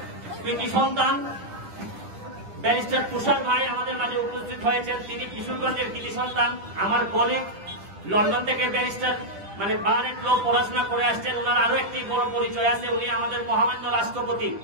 কৃতি সন্তান ব্যারিস্টার তুষার ভাই আমাদের মাঝে উপস্থিত হয়েছেন। তিনি কিশোরগঞ্জের কৃতি সন্তান, আমার কলিগ, লন্ডন থেকে ব্যারিস্টার মানে বারেট ল পড়াশোনা করে আসছেন। ওনার আরো একটি বড় পরিচয় আছে, উনি আমাদের মহামান্য রাষ্ট্রপতি,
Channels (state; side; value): late; left; 10 ms